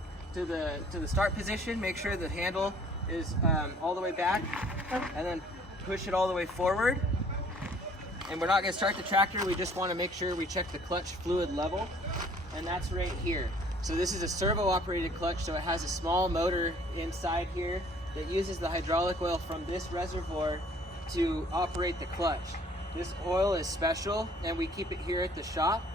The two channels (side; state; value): both; normal; correlation 0.56